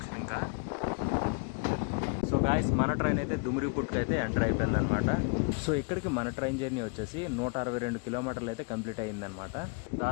ఇంకా సో గాయస్ మన ట్రైన్ అయితే దుమ్రిపుట్కి అయితే ఎంటర్ అయిపోయింది అనమాట. సో ఇక్కడికి మన ట్రైన్ జర్నీ వచ్చేసి 162 కిలోమీటర్లు అయితే కంప్లీట్ అయ్యిందనమాట.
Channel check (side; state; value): right; quieter; 35.2 dB